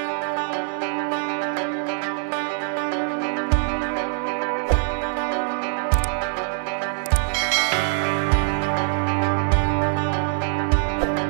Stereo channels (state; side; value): silent; left; 63 dB below the other